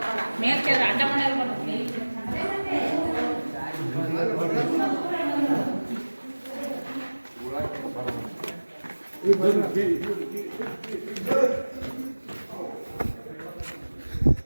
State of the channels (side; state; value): both; inverted; correlation -1.00